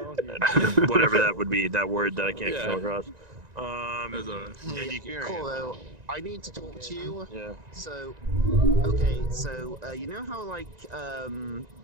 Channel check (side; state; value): left; late; 1.9 ms